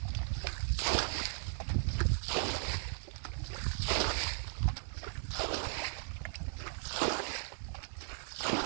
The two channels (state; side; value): silent; left; digital silence